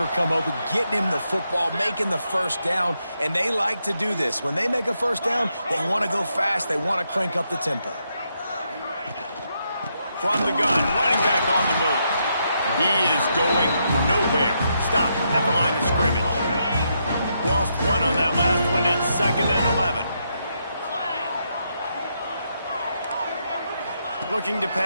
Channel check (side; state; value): both; inverted; correlation -0.80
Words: come open, getting him the football, making the first down, and they like to do this. When they make a first down, they want to go fast. They want to crank up the tempo. From the gun, running back on the move. He is going nowhere. Stop at the line of scrimmage. Lost one on that last one. It's 2nd and 11. Looking to